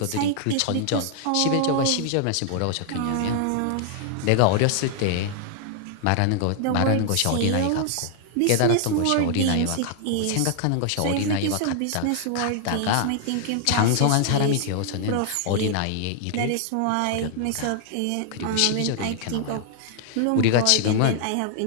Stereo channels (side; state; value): both; different; correlation -0.01